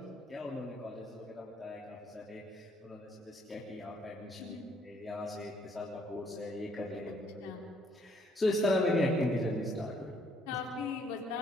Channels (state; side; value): normal; both; correlation 0.66